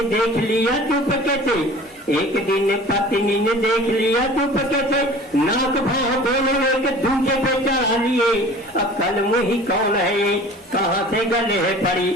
देख लिया चुपके से, एक दिन पत्नी ने देख लिया चुपके से, नाक भाव दोनों एक दूसरे पे चढ़ा लिए। अब कल मुही कौन है ये, कहाँ से गले है पड़ी,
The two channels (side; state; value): both; normal; correlation 0.44